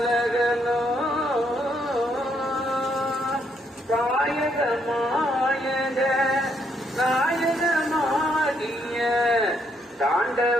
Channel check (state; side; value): normal; both; correlation 0.73